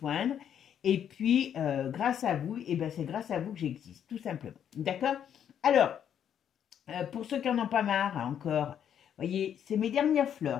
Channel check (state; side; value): quieter; right; 9.1 dB